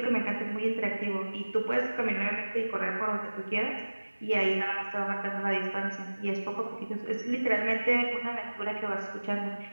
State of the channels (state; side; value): inverted; both; correlation -1.00